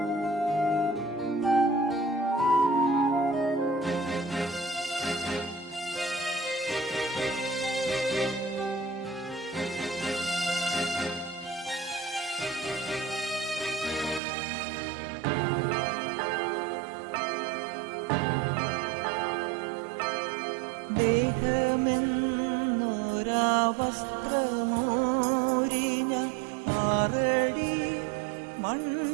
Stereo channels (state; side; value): drops out; left; at 14.2 s